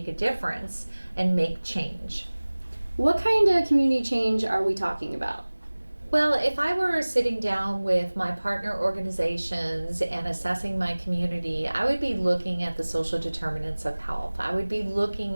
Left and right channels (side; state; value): both; inverted; correlation -1.00